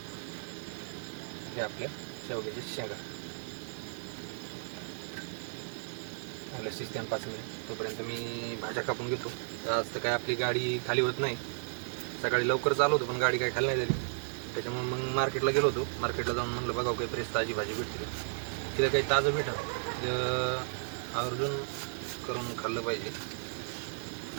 हे आपल्या शेवग्याच्या शेंगा चांगल्या शिजत्यान 5 मिनिट. तोपर्यंत मी भाज्या कापून घेतो. आज तर काय आपली गाडी खाली होत नाही. सकाळी लवकर चालू होतो पण गाडी काय खाली नाही झाली. त्याच्यामुळे मग मार्केटला गेलो होतो. मार्केटला जाऊन म्हणलं बघावं काही फ्रेश ताजी भाजी भेटते का. तिथं काही ताजं भेटा आवर्जून करून खाल्लं पाहिजे.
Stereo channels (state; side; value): silent; left; 55 dB below the other